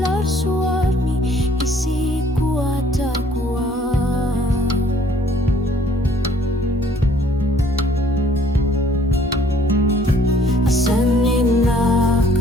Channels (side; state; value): both; normal; correlation 0.59